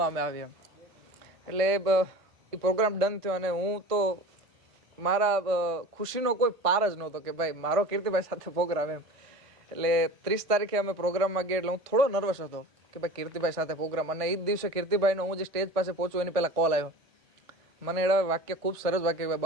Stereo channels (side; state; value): left; late; 1.5 ms